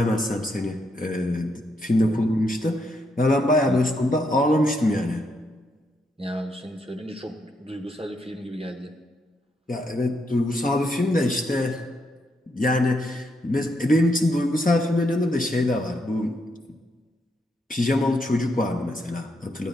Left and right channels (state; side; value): normal; both; correlation 0.78